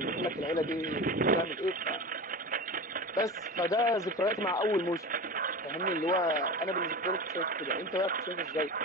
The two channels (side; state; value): both; normal; correlation 0.29